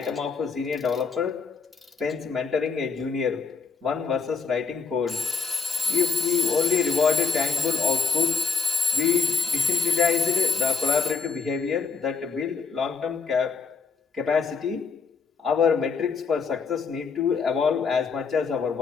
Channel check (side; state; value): right; quieter; 5.3 dB